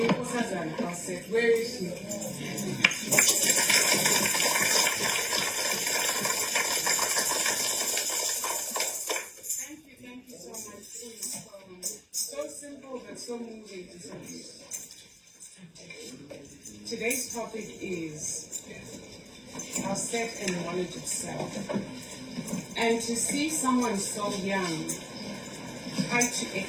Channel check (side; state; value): both; identical; correlation 1.00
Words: Auset? Where is she? Thank you so much for your poem. So simple but so moving to some people. Today's topic is Auset and knowledge of self. And to see someone so young try to